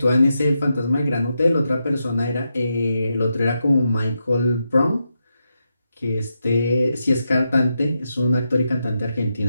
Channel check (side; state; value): both; inverted; correlation -0.85